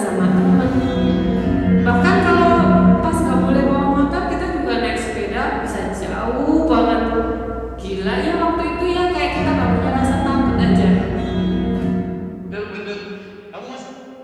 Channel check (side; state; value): both; identical; correlation 1.00